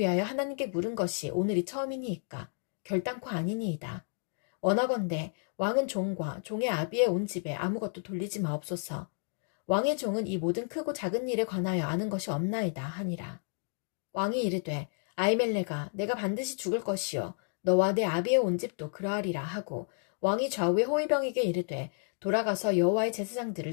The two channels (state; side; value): silent; right; 55 dB below the other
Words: 하나님께 물은 것이 오늘이 처음이니이까 결단코 아니니이다. 원하건대 왕은 종과 종의 아비의 온 집에 아무것도 돌리지 마옵소서. 왕의 종은 이 모든 크고 작은 일에 관하여 아는 것이 없나이다 하니라. 왕이 이르되 아히멜렉아 내가 반드시 죽을 것이요 너와 내 아비의 온 집도 그러하리라 하고 왕이 좌우의 호위병에게 이르되 돌아가서 여호와의